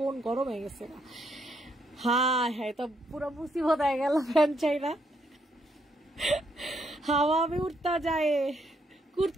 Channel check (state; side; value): normal; both; correlation 0.75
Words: গরম হয়ে গেছে না। হ্যাঁ হ্যাঁ, তো পুরো মুসিবত হয়ে গেল, ফ্যান চাই না, হাওয়া আমি উঠতে যায়।